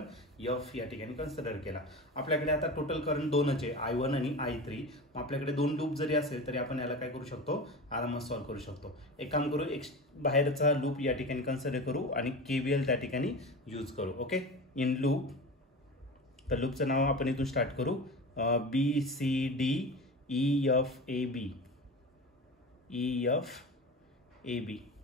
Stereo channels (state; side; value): normal; both; correlation 0.30